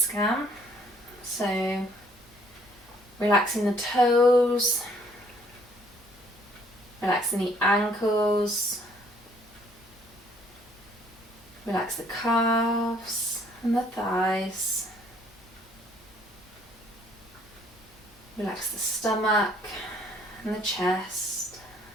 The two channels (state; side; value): normal; both; correlation 0.62